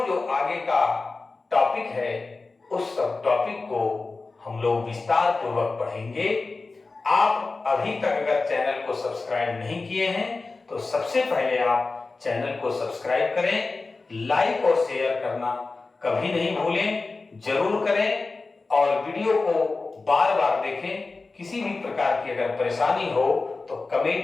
जो आगे का टॉपिक है उस सब टॉपिक को हम लोग विस्तार पूर्वक पढ़ेंगे। आप अभी तक अगर चैनल को सब्सक्राइब नहीं किए हैं तो सबसे पहले आप चैनल को सब्सक्राइब करें, लाइक और शेयर करना कभी नहीं भूलें, जरूर करें, और वीडियो को बार बार देखें। किसी भी प्रकार की अगर परेशानी हो तो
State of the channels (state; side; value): quieter; right; 3.8 dB